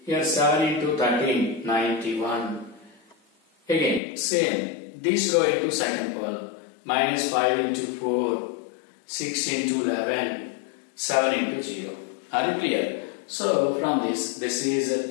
Here 7 into 13, 91. Again, same. This row into second column. Minus 5 into 4, 6 into 11, 7 into 0. Are you clear? So from this is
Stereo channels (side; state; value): right; drops out; at 4.0 s